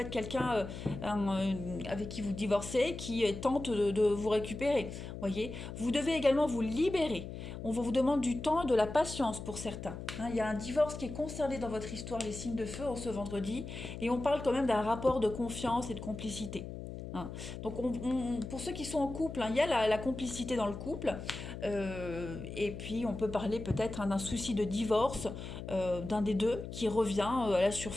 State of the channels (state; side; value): noise; left; hum, 9 dB below the sound